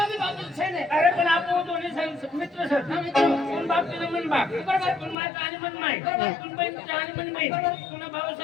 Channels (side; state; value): right; drops out; at 5.2 s